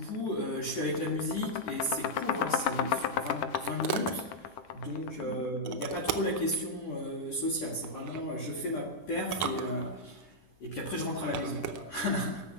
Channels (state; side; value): late; right; 10 ms